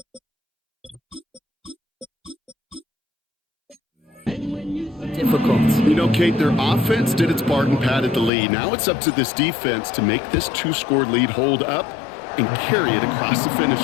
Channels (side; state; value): right; drops out; at 8.3 s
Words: difficult. You know, Kate, their offense did its part and padded the lead. Now it's up to this defense to make this 2-score lead hold up and carry it across the finish